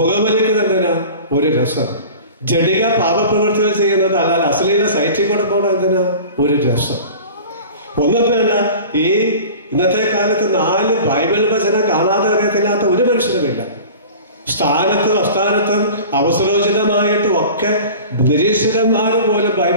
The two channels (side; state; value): both; inverted; correlation -0.39